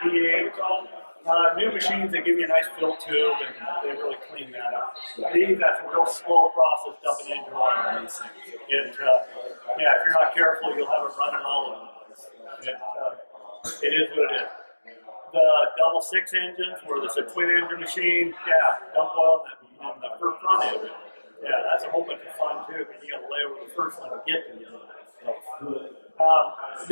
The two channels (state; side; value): inverted; both; correlation -1.00